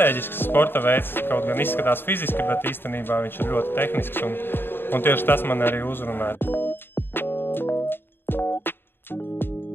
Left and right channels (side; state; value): right; late; 0.10 ms